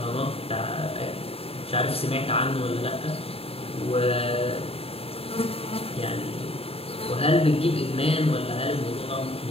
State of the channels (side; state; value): right; late; 0.28 ms